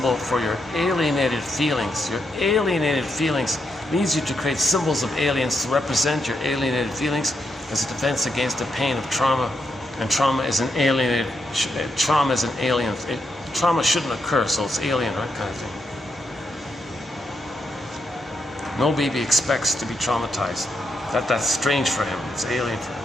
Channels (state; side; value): normal; both; correlation 0.81